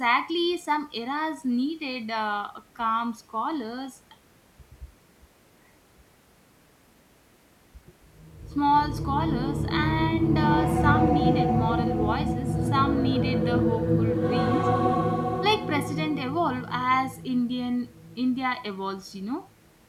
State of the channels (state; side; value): identical; both; correlation 1.00